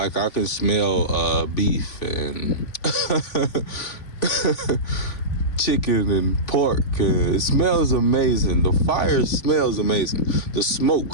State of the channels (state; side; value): late; right; 3.5 ms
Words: I can smell beef and chicken and pork. It smells amazing. The fire smells amazing. The